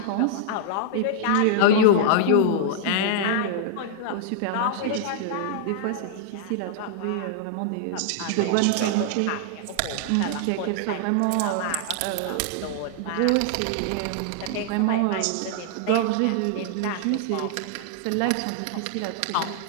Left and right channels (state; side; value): different; both; correlation -0.01